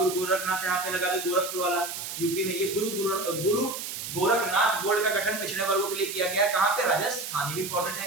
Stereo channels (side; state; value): right; noise; hiss, 7 dB below the sound